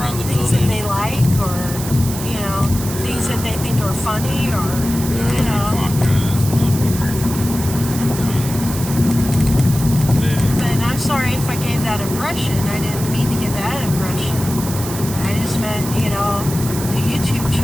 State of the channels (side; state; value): right; noise; hiss, 9 dB below the sound